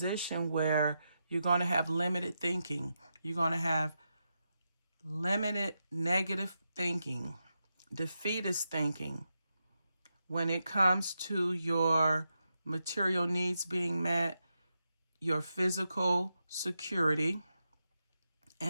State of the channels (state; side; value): inverted; both; correlation -0.87